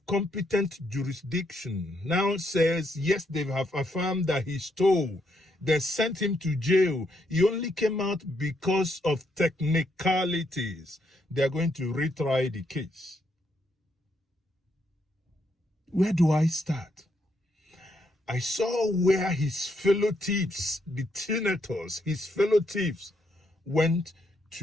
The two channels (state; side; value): normal; both; correlation 0.76